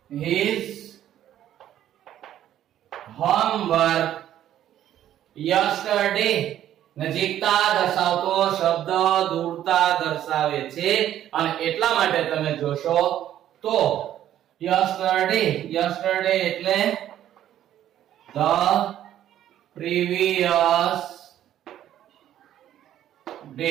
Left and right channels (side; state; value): left; quieter; 11.7 dB